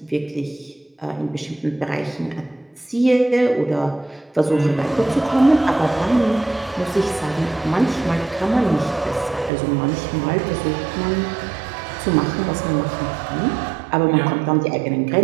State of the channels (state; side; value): drops out; left; at 9.5 s